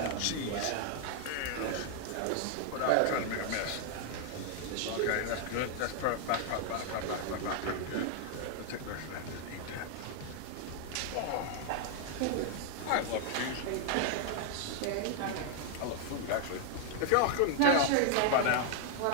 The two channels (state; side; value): different; both; correlation 0.00